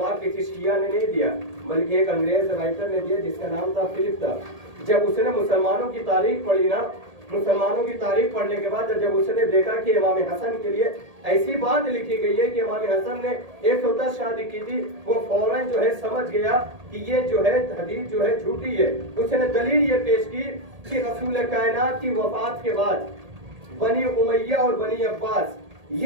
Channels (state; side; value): late; left; 1.8 ms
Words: किसी शिया ने नहीं दिया बल्कि एक अंग्रेज राइटर ने दिया जिसका नाम था फिलिप था। जब उसने मुसलमानों की तारीख पढ़ी ना, मुसलमानों की तारीख पढ़ने के बाद जब उसने देखा कि इमाम हसन के लिए ऐसी बात लिखी गई है कि इमाम हसन ने 110 शादी की थी, वो फौरन जो है समझ गया कि ये जो है हदीस जो है झूठी है। उसने दलील ये पेश की कि रसूल कायनात की वफात के बाद बनी उमैया और बनी अब्बास